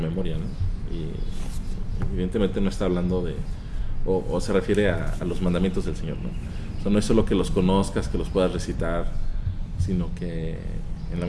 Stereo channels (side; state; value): both; identical; correlation 1.00